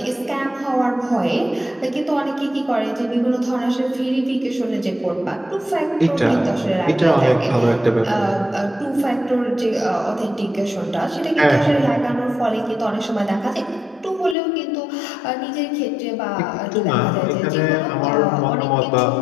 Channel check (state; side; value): drops out; right; at 14.4 s